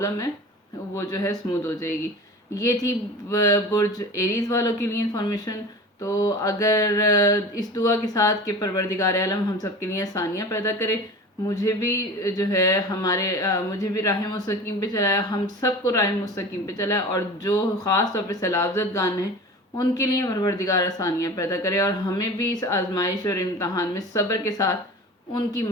ہے وہ جو ہے اسموتھ ہو جائے گی. یہ تھی برج ایریز والوں کے لیے انفارمیشن. تو اگر اس دعا کے ساتھ کہ پروردگار عالم ہم سب کے لیے آسانیاں پیدا کرے، مجھے بھی جو ہے مجھے بھی راہ مستقیم پہ چلائے، ہم سب کو راہ مستقیم پہ چلائے، اور جو خاص طور پہ سیلابزد گان ہیں ان کے لیے پروردگار آسانیاں پیدا کرے، اور ہمیں بھی اس آزمائش اور امتحان میں صبر کے ساتھ ان کی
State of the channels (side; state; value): both; normal; correlation 0.36